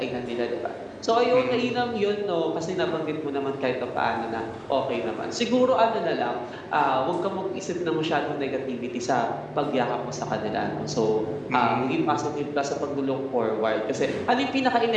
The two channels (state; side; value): identical; both; correlation 1.00